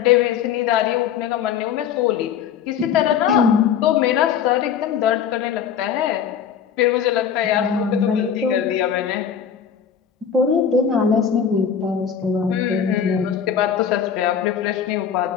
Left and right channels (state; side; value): quieter; right; 8.0 dB